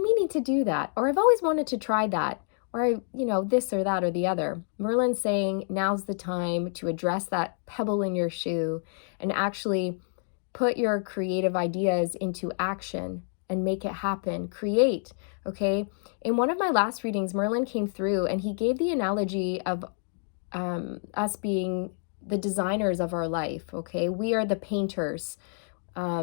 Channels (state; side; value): silent; right; 59 dB below the other